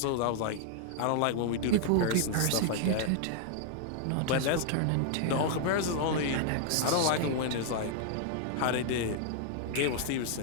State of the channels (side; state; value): both; different; correlation -0.01